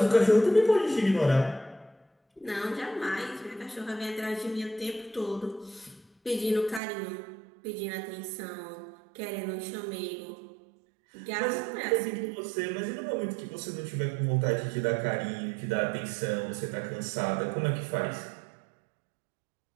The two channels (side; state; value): left; drops out; at 6.8 s